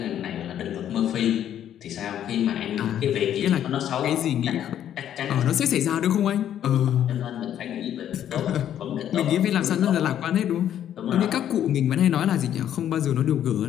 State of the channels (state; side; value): quieter; right; 10.5 dB